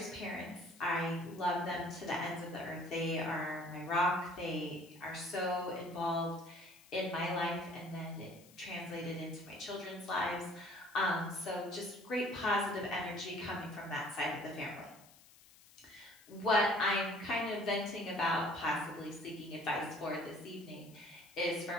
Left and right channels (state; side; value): noise; left; hiss, 24 dB below the sound